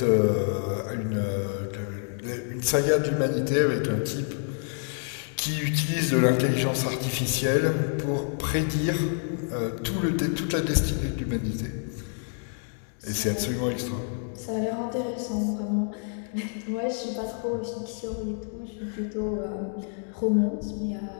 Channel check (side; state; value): right; silent; 60 dB below the other